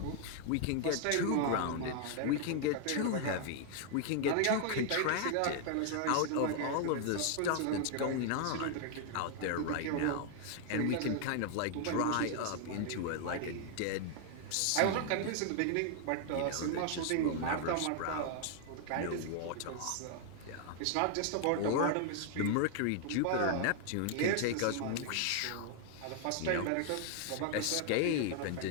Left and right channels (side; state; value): both; different; correlation 0.00